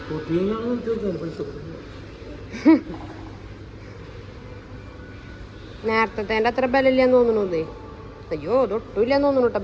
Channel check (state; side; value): identical; both; correlation 1.00